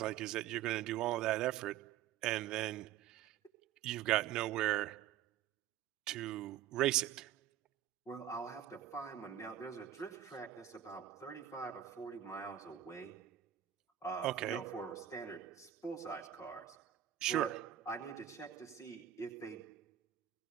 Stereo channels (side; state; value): left; quieter; 11.0 dB